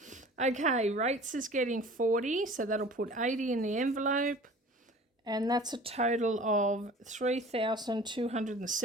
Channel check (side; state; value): both; normal; correlation 0.44